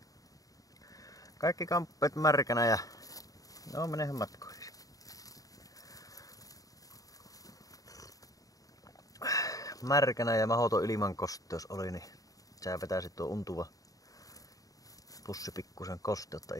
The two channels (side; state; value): right; late; 0.17 ms